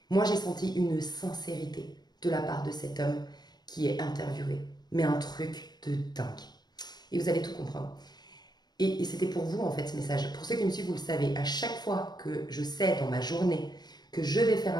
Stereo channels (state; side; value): late; right; 0.20 ms